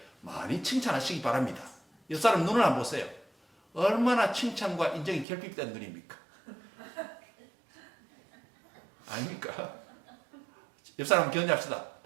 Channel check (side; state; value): left; drops out; at 5.2 s